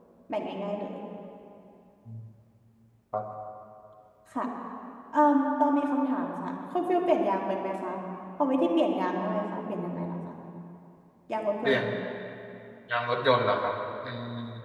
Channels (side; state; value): both; identical; correlation 1.00